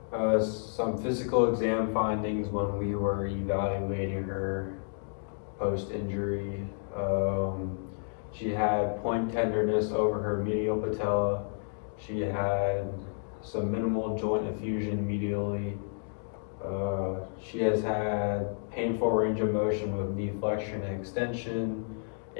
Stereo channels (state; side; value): silent; right; digital silence